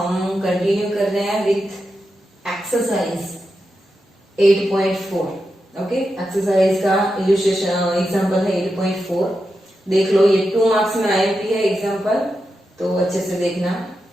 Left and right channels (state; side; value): normal; both; correlation 0.88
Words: कंटिन्यू कर रहे हैं विथ एक्सरसाइज 8.4। ओके, एक्सरसाइज का इल्यूस्ट्रेशन एग्जांपल है 8.4। देख लो, ये 2 मार्क्स में आईएमपी है एग्जांपल, तो अच्छे से देखना।